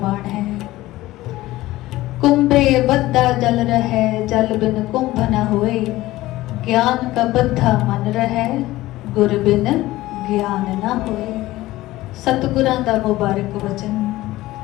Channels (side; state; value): right; quieter; 17.2 dB